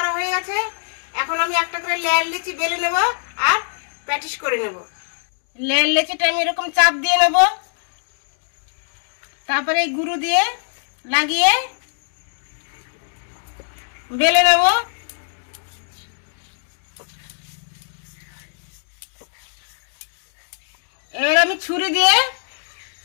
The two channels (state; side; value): silent; right; digital silence